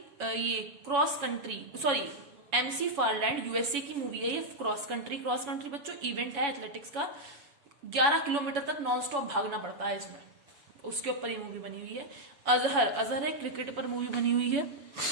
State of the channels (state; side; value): late; left; 7.1 ms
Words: ये क्रॉस कंट्री, एमसी फारलैंड, यूएसए की मूवी है ये, क्रॉस कंट्री बच्चों इवेंट है एथलेटिक्स का, 11 किलोमीटर तक नॉन स्टॉप भागना पड़ता है इसमें, उसके ऊपर ये मूवी बनी हुई है। अजहर है, क्रिकेट पर मूवी बनी हुई है।